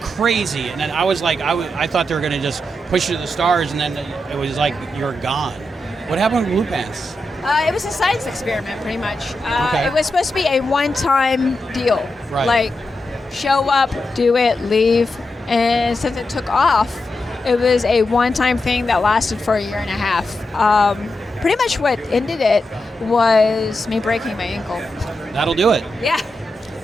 And then I was like, I thought they were going to just push you to the stars, and then it was like you're gone. What happened with Blue Pants? It was a science experiment, pretty much. Okay. It was supposed to be a one-time deal. Right. Like, show up, do it, leave. And since it took off, it was a one-time thing that lasted for a year and a half. Pretty much what ended it was me breaking my ankle. That'll do it. Yeah.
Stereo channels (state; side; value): normal; both; correlation 0.87